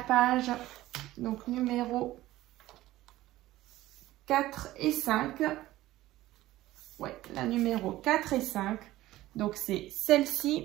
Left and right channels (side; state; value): left; quieter; 16.0 dB